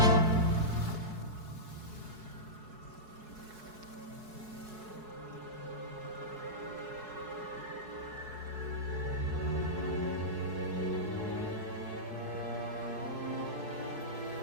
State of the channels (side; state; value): left; late; 4.7 ms